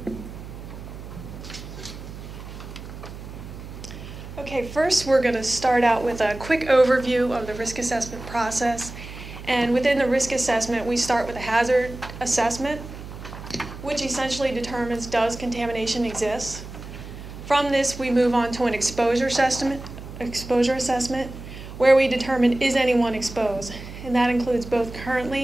Okay, first we're going to start out with a quick overview of the risk assessment process. And within the risk assessment, we start with a hazard assessment, which essentially determines does contamination exist. From this, we move on to an exposure assessment, where we determine is anyone exposed. And that includes both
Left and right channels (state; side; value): noise; right; hum, 12 dB below the sound